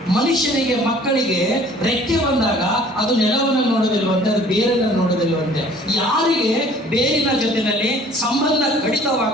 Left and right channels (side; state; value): both; normal; correlation 0.52